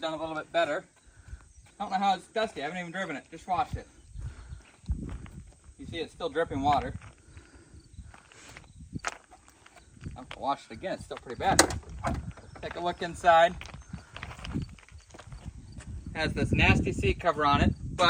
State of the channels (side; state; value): both; identical; correlation 1.00